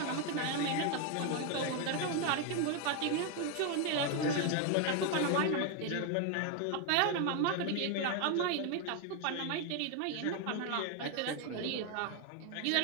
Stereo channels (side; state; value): both; different; correlation 0.01